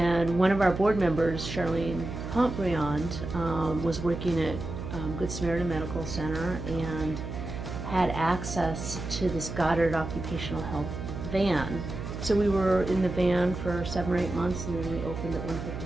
one of our board members, Charlene Pontbriand, was working at Good Samaritan Medical Center and had access to this Goddard occupational health van. So we were in the van for 7 or 8 months, and then we opened at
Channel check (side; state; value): right; noise; hum, 7 dB below the sound